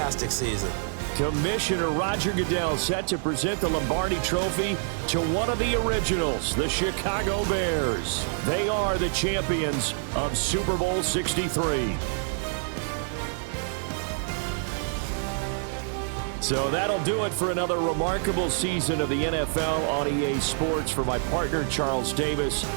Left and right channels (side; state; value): left; silent; digital silence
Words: season. Commissioner Roger Goodell set to present the Lombardi Trophy to one of the originals, the Chicago Bears. They are the champions of Super Bowl 63. So that'll do it for another remarkable season of the NFL on EA Sports. For my partner, Charles Davis,